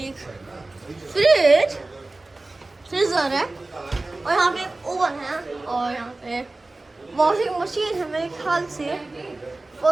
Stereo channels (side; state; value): left; quieter; 3.0 dB